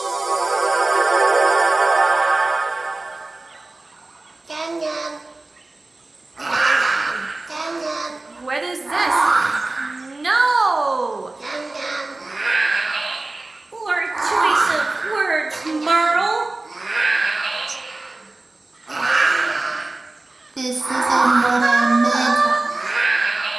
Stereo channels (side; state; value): left; quieter; 3.1 dB